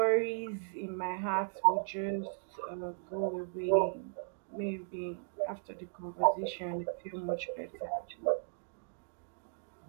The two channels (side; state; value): left; silent; digital silence